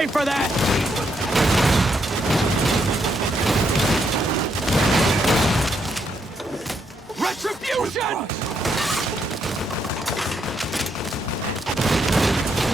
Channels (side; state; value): both; normal; correlation 0.77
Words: for that! Retribution!